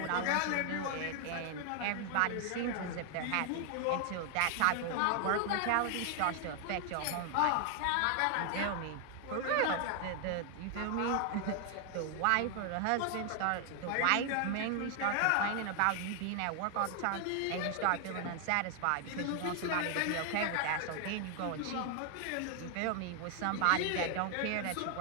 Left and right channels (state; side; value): different; both; correlation 0.00